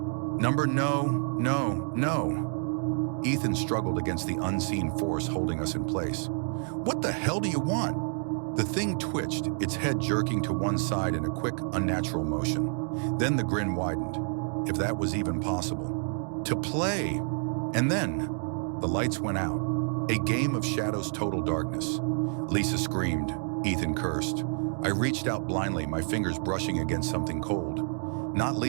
"Number, no, no, no." Ethan struggled against the unseen force holding us in place. "What the hell do you want?" The thing twitched, its head jerking to one side in a quick, unnatural motion. Then the grin widened, if that was even possible. "To play." And then, the lights went out. A game of shadows, total darkness. Lisa screamed. Ethan cursed. I reached out blindly, my fingers brushing against something cold. Not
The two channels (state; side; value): silent; left; 55 dB below the other